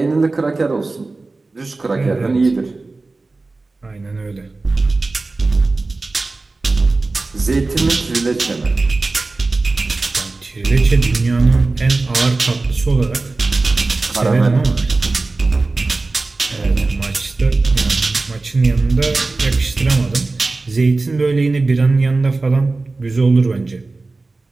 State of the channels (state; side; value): quieter; left; 3.5 dB